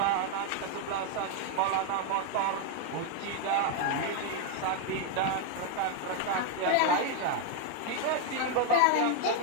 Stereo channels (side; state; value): both; different; correlation 0.00